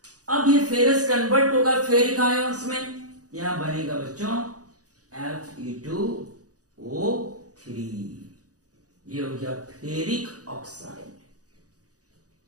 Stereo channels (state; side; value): late; left; 0.67 ms